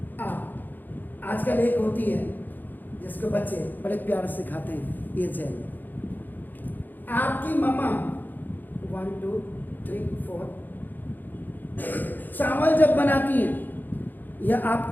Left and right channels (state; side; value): late; right; 0.087 ms